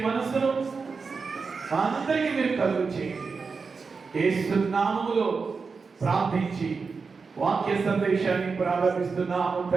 మనస్సును అందరికీ మీరు కలుగు చేయండి. యేసు నామములో ప్రార్థించి వాక్య సందేశాన్ని ప్రారంభిస్తున్నాము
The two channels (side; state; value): left; quieter; 4.8 dB